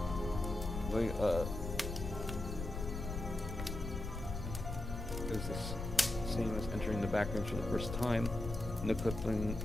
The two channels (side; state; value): left; noise; rumble, 5 dB below the sound